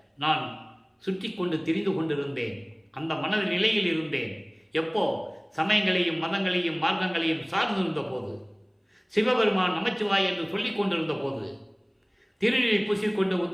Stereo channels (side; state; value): both; identical; correlation 1.00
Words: நான் சுற்றி கொண்டு திரிந்து கொண்டிருந்தேன். அந்த மன நிலையில் இருந்தேன். எப்போ? சமயங்களையும் மதங்களையும் மார்க்கங்களையும் சார்ந்திருந்த போது, சிவபெருமான் நமச்சிவாய் என்று சொல்லிக் கொண்டிருந்த போது, திருநீரை பூசிக்கொண்டு